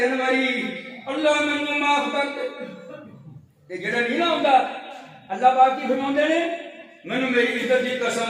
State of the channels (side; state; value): both; identical; correlation 1.00